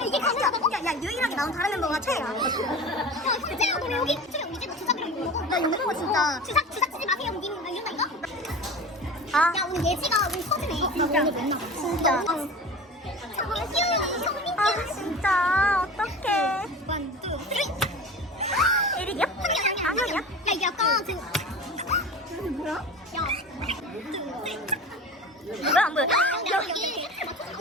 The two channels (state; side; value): normal; both; correlation 0.34